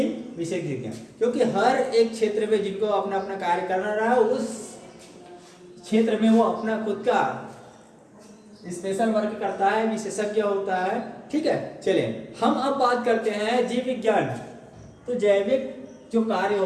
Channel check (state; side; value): identical; both; correlation 1.00